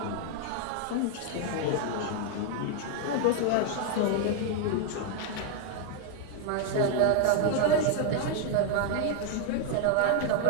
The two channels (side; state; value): both; different; correlation 0.01